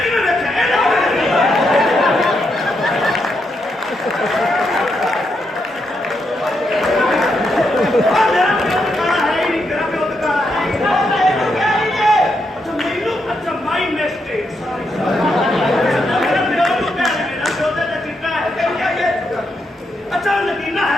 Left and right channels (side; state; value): both; normal; correlation 0.81